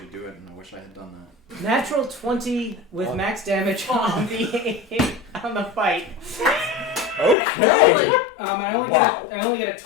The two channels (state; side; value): drops out; right; at 7.4 s